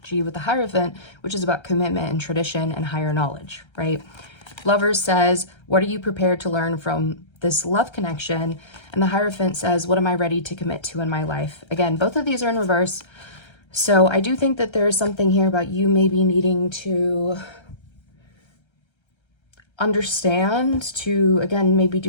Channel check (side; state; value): right; late; 1.3 ms